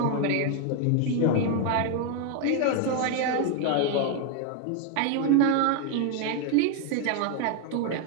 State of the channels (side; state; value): both; different; correlation 0.01